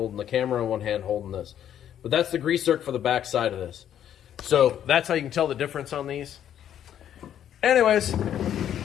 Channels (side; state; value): right; quieter; 10.2 dB